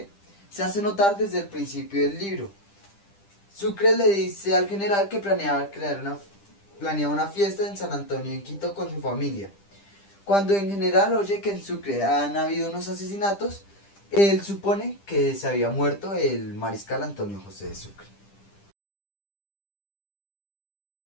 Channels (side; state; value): right; late; 10 ms